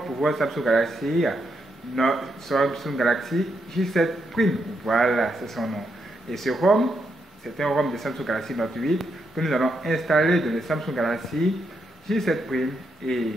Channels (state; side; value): normal; both; correlation 0.80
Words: pour votre Samsung Galaxy, notre Samsung Galaxy J7 Prime. Voilà, c'est son nom. Et ce ROM, c'est un ROM de Samsung Galaxy Note 8 que nous allons installer dans le Samsung Galaxy J7 Prime. Et